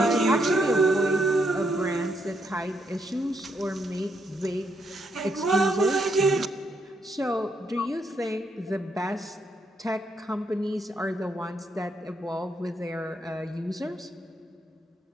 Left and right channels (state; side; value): normal; both; correlation 0.77